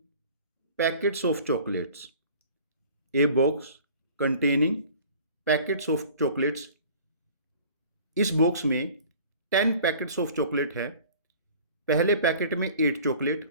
packets of chocolates, a box containing packets of chocolates. इस box में 10 पैकेट्स ऑफ चॉकलेट है। पहले पैकेट में 8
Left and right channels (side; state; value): both; inverted; correlation -0.47